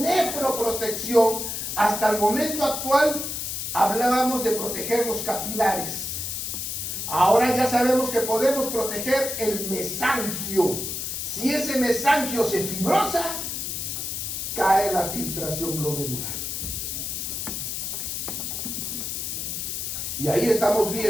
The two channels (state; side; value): noise; left; hiss, 4 dB below the sound